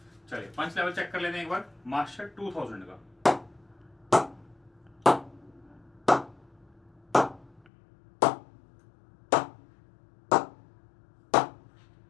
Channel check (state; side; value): drops out; right; at 7.6 s